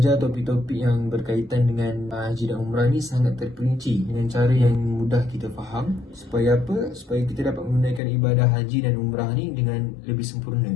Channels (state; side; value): drops out; right; at 8.0 s